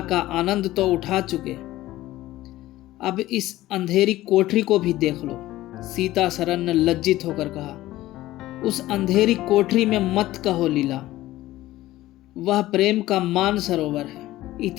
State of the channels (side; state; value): right; quieter; 16.1 dB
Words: का आनंद तो उठा चुके, अब इस अंधेरी कोठरी को भी देख लो। सीतासरन ने लज्जित होकर कहा, उस अंधेरी कोठरी में मत कहो लीला, वह प्रेम का मान सरोवर है।